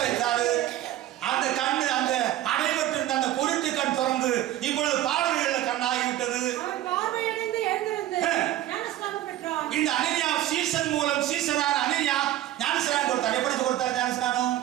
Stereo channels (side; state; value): left; quieter; 13.6 dB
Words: வைத்தாரு. அந்த கண்ணு, அந்த அடைபட்டிருந்த அந்த பொருட்டு கண் திறந்து இப்பொழுது பார்வையுள்ள கண்ணாகிவிட்டது. அவன் பார்வையடைந்து எழுந்திருந்து ஞானஸ்நானம் பெற்றான். இந்த அனனியா சீசன் மூலம் சீசனான அனனியா ஞானஸ்நானம் கொடுத்தார். எப்படி கொடுத்தார் ஞானஸ்நானம்?